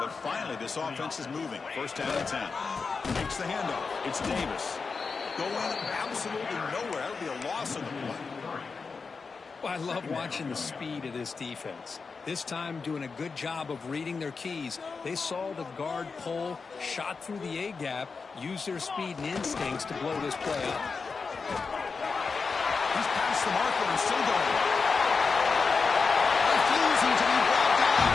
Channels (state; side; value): quieter; right; 4.8 dB